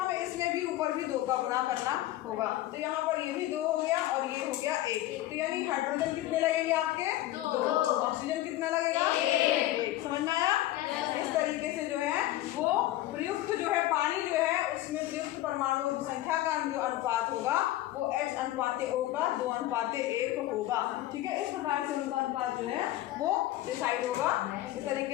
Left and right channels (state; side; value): quieter; right; 15.2 dB